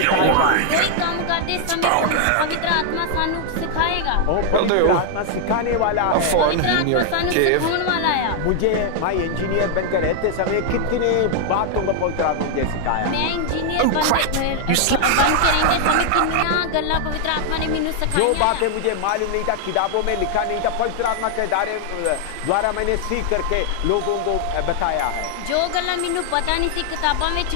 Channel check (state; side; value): different; both; correlation 0.00